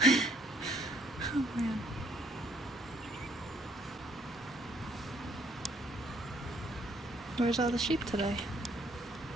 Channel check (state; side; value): normal; both; correlation 0.66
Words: Oh man. Where's all the sheep today?